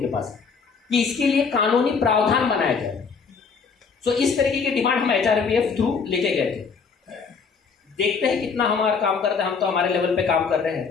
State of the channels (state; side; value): quieter; right; 5.4 dB